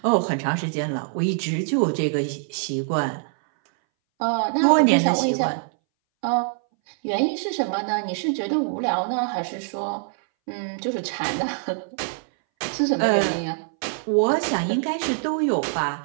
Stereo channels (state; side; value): silent; left; 61 dB below the other